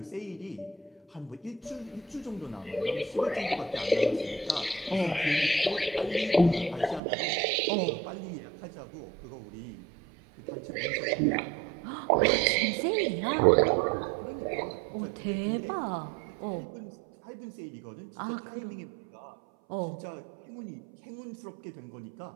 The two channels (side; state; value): left; drops out; at 7.0 s